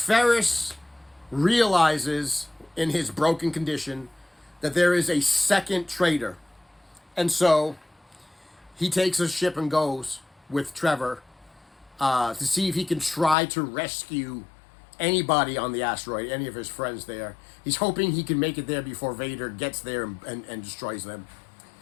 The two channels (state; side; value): drops out; right; at 13.4 s